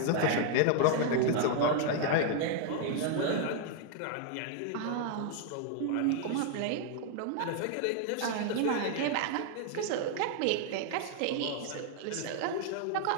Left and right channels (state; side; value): different; both; correlation 0.00